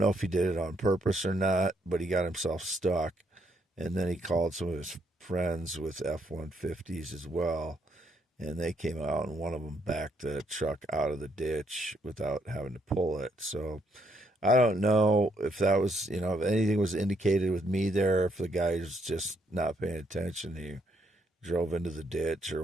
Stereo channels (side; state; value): both; normal; correlation 0.74